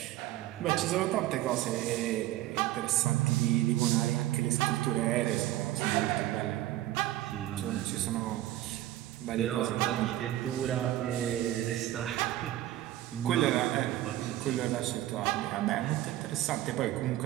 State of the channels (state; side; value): quieter; left; 14.6 dB